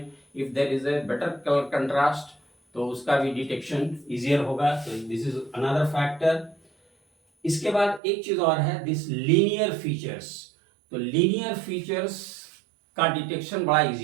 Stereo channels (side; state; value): left; drops out; at 8.0 s